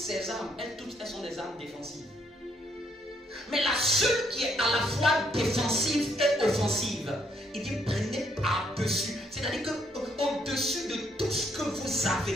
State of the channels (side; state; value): both; normal; correlation 0.71